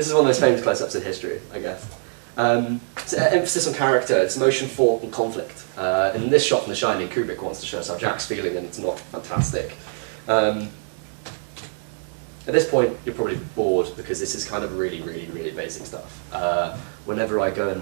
is one of those famous close-ups in history, I guess. It's an emphasis on character, it's emotion, thought, and conflict. In this shot from The Shining, Kubrick wants to show us how Jack's feeling, and it's not fantastic. At this point, you're probably bored because this is kind of really, really, really basic stuff. Whenever I go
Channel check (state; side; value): silent; left; digital silence